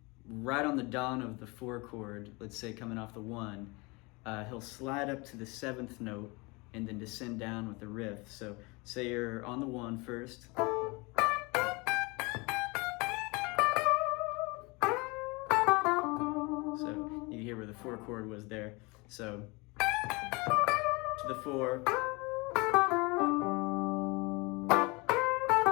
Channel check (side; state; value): right; quieter; 26.7 dB